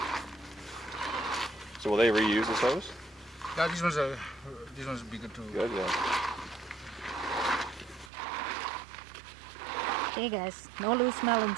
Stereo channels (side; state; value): left; drops out; at 8.1 s